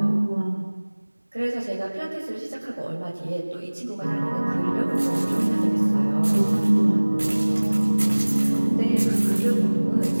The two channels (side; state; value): both; inverted; correlation -1.00